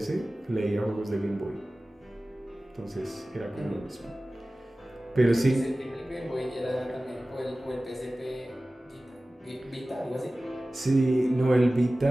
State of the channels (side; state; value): both; normal; correlation 0.97